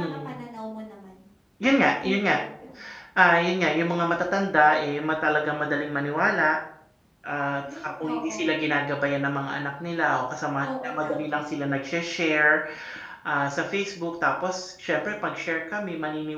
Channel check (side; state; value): both; identical; correlation 1.00